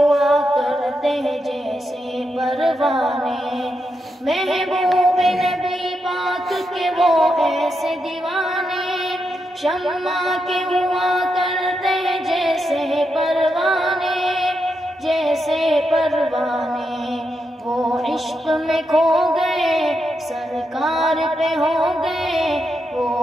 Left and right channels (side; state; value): both; normal; correlation 0.84